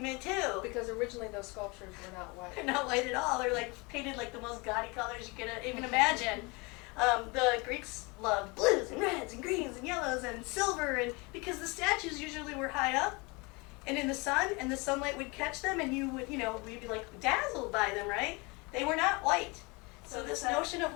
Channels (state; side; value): quieter; right; 27.4 dB